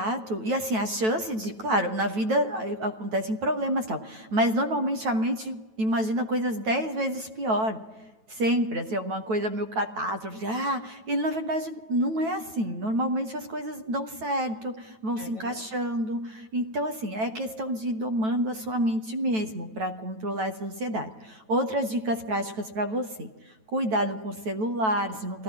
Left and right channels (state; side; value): late; left; 9.2 ms